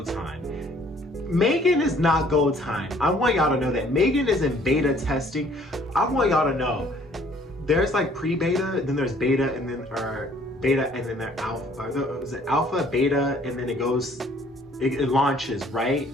time? M3GAN is not go time. I want y'all to know that M3GAN is in beta testing. I want y'all to know there's like pre-beta, then there's beta, and then beta, and then there's alpha. Is it alpha, beta, and then it launches, right?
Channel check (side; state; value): both; normal; correlation 0.59